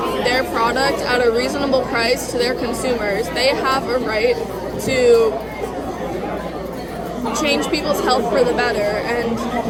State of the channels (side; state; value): both; identical; correlation 1.00